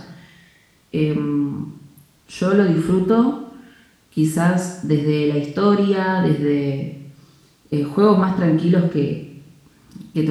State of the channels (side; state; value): both; identical; correlation 1.00